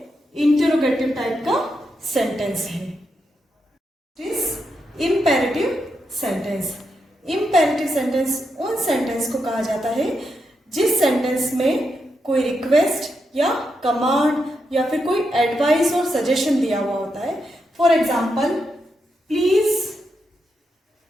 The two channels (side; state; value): both; normal; correlation 0.84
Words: इंटरोगेटिव टाइप का सेंटेंस है। Imperative sentence. इम्पेरेटिव सेंटेंस उन सेंटेंस को कहा जाता है जिस सेंटेंस में कोई रिक्वेस्ट या कमांड या फिर कोई एडवाइस और सजेशन दिया हुआ होता है। For example, please